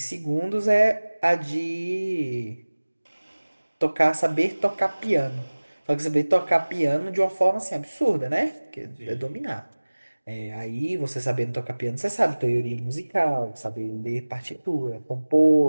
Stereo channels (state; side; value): inverted; both; correlation -1.00